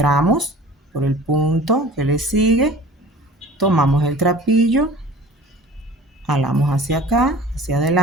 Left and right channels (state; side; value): normal; both; correlation 0.44